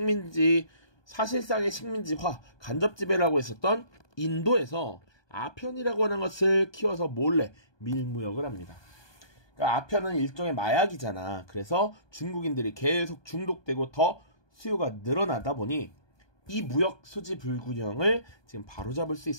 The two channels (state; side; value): late; right; 1.2 ms